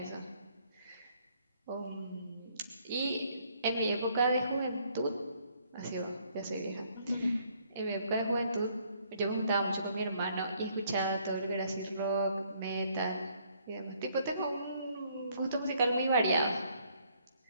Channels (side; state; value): both; inverted; correlation -0.66